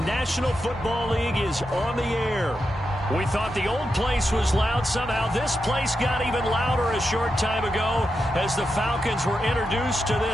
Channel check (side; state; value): both; normal; correlation 0.87